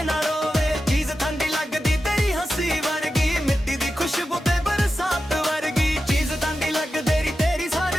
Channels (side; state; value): both; normal; correlation 0.91